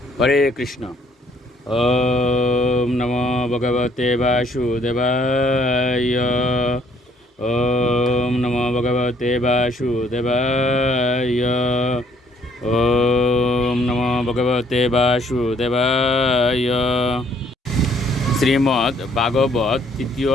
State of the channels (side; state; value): both; normal; correlation 0.64